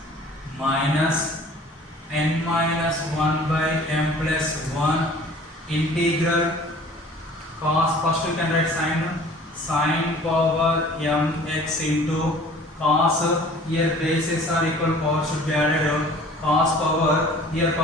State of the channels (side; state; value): both; normal; correlation 0.48